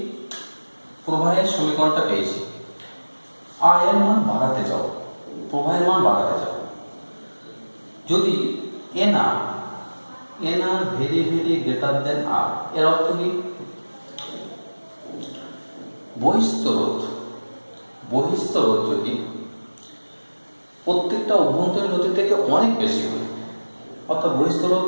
প্রবাহের সমীকরণটা পেয়েছি, আয়ের মান বাড়াতে যাও, প্রবাহের মান বাড়াতে যাও, যদি n r very very greater than r, এর অর্থ কি বহিস্থ রোধ যদি প্রত্যেকটা অভ্যন্তরীণ রোধের থেকে অনেক বেশি হয়, অর্থাৎ বহিস্থ রোধ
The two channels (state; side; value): inverted; both; correlation -1.00